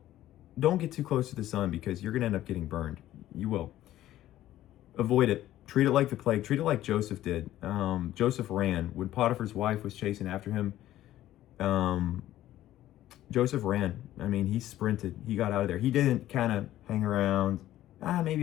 get too close to the sun, because you're going to end up getting burned. You will. Avoid it. Treat it like the plague. Treat it like Joseph did. Joseph ran. When Potiphar's wife was chasing after him, Joseph ran. He sprinted. He got out of there. He didn't kind of hang around.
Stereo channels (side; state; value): right; quieter; 13.8 dB